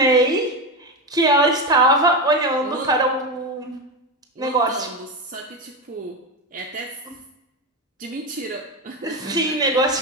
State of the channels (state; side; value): normal; both; correlation 0.16